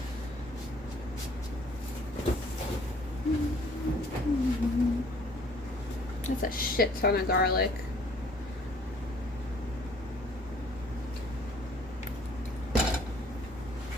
Mm-hmm. That's a shit ton of garlic.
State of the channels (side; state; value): both; normal; correlation 0.58